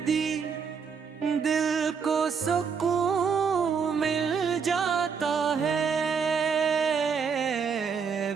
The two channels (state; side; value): quieter; left; 6.1 dB